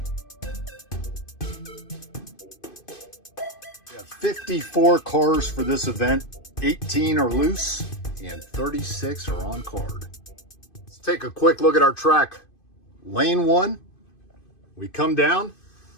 We have 54 cars for this event. 18 are loose and 36 are on card. Let's take a quick look at our track. Lane 1, we come down,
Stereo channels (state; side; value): late; right; 2.5 ms